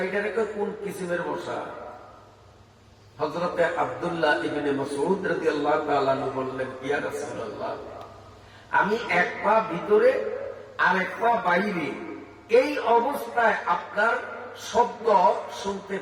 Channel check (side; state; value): both; identical; correlation 1.00